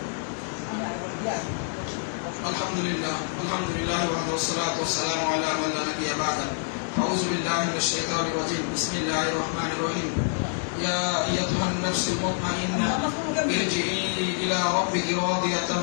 আলহামদুলিল্লাহ ওয়াসসালাতু ওয়াসসালামু আলা মান লা নাবিয়্যা বা'দা। আউযু বিল্লাহি মিনাশ শাইতানির রাজীম। বিসমিল্লাহির রহমানির রহিম। ইয়া আইয়ুহান নাফসুল মুতমাইন্নাহ ইরজিই ইলা রাব্বিকি রাদিয়াতান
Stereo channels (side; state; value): right; silent; 60 dB below the other